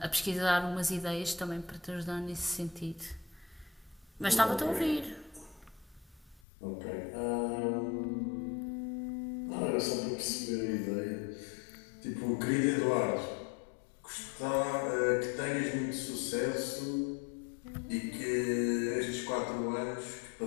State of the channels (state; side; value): drops out; right; at 6.4 s